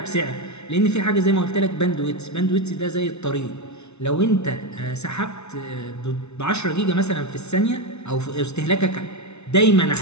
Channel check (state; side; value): late; right; 0.81 ms